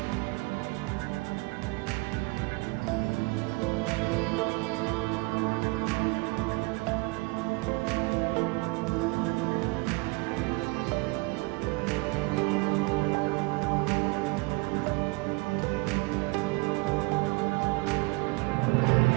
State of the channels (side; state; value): left; quieter; 26.1 dB